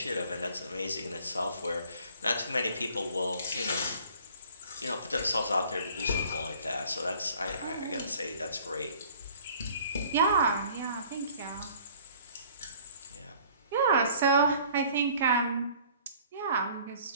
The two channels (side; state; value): both; inverted; correlation -0.53